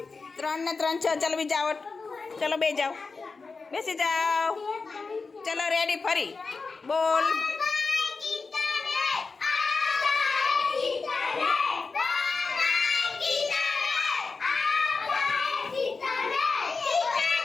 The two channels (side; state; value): right; quieter; 4.3 dB